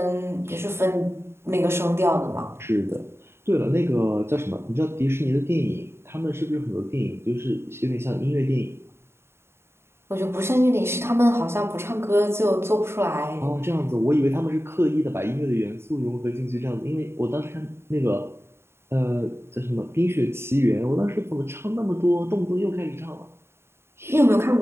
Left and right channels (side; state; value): left; late; 0.12 ms